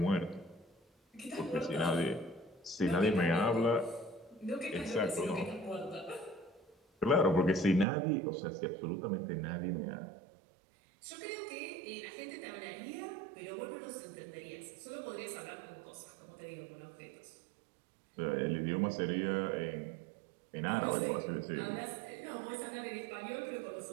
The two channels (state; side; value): drops out; left; at 7.9 s